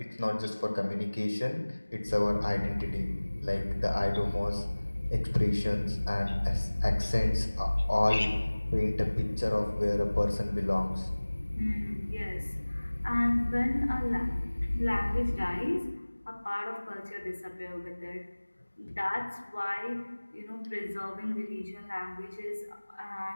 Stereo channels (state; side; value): inverted; both; correlation -1.00